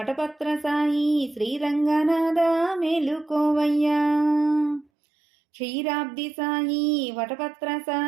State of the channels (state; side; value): drops out; left; at 4.9 s